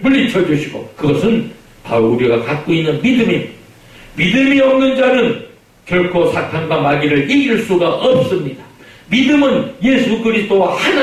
물리쳐주시고 그것은 바로 우리가 갖고 있는 믿음입니다. 믿음이 없는 자는 결코 사탄과 마귀를 이길 수가 없습니다. 믿음은 예수 그리스도와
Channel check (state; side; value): identical; both; correlation 1.00